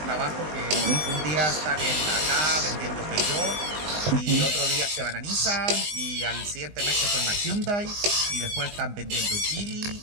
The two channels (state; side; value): late; left; 19 ms